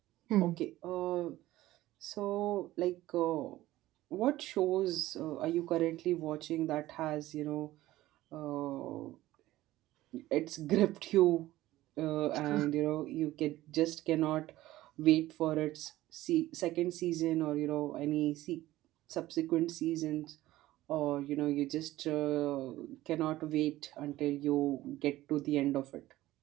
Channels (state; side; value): quieter; left; 16.1 dB